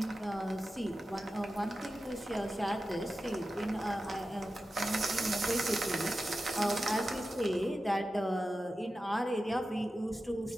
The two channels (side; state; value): both; normal; correlation 0.92